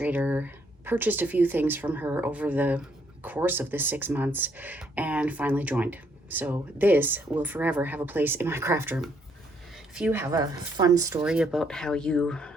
purchased a few things from her over the course of the 6 months, and finally joined. So this will forever have a place in my craft room. If you have a fun story about how you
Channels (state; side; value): normal; both; correlation 0.71